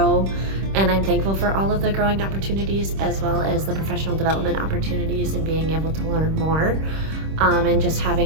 And I'm thankful for all of the growing opportunities, as well as the professional development opportunities and being able to learn more. And just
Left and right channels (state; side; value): late; left; 26 ms